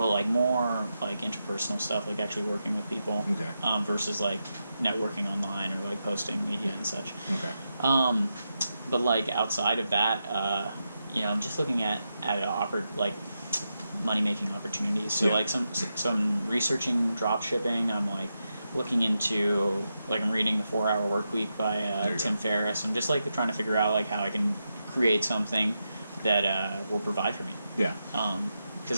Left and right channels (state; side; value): inverted; both; correlation -0.87